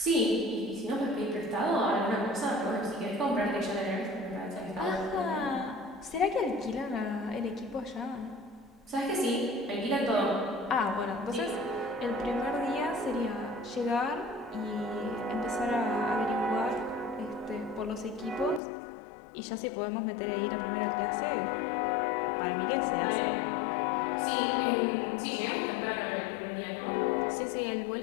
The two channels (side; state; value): right; drops out; at 18.6 s